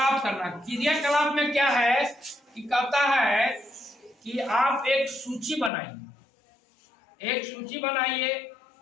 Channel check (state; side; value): drops out; right; at 5.7 s